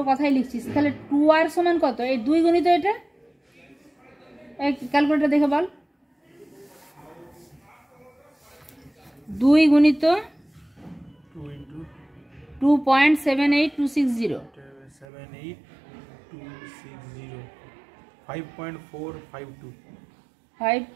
কথাই লিখছি, তাহলে 2r সমান কত, এই 2 গুণিত এটা, ক্যালকুলেটর দেখে বল, 2 গুণিত 2.78260,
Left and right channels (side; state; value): left; drops out; at 15.1 s